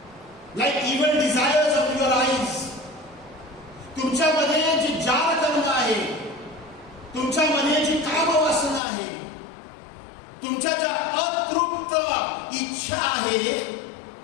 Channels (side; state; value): right; drops out; at 8.8 s